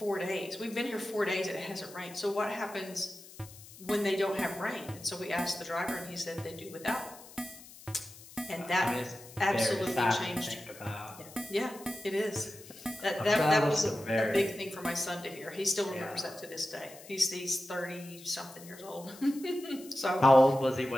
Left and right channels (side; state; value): left; noise; hiss, 19 dB below the sound